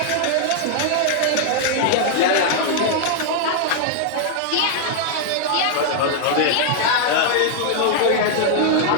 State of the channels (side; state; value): both; different; correlation 0.00